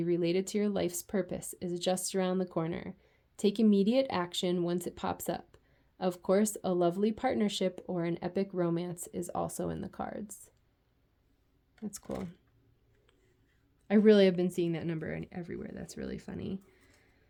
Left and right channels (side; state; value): both; identical; correlation 1.00